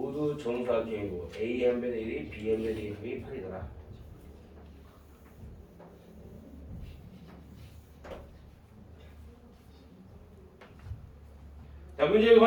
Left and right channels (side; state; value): both; identical; correlation 1.00